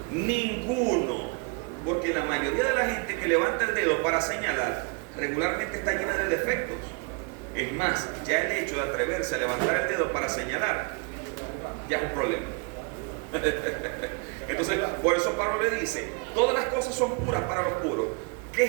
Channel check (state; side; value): quieter; left; 32.7 dB